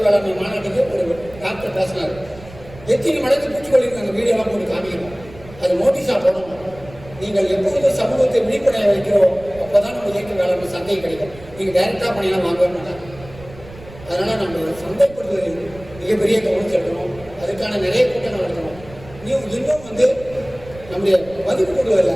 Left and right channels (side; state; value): right; noise; rumble, 19 dB below the sound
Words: வேளாண்மை மாநாட்டுக்கு ஒரு டாக்டர் பேசினார், எத்தனை மடங்கு பூச்சிக்கொல்லி அந்த வீடியோலாம் போட்டு காமிக்கணும், அது நோட்டீஸாக போடணும். நீங்கள் எப்பொழுது சமூகத்தை விழிப்படைய வைக்கிறோம் அப்போதான் நம்ம இயற்கை வேளாண்மை சந்தை கிடைக்கும். நீங்கள் டைரக்டாக பண்ணியெல்லாம் வாங்கவே மாட்டாங்க. அதனால நம்ம சந்தைப்படுத்துவதில் மிகப்பெரிய கவனம் செலுத்தணும். அதுக்கான நிறைய கூட்டங்கள் நடத்தணும். இன்னும் வந்து நம்முடைய மதிப்பு கூடுதல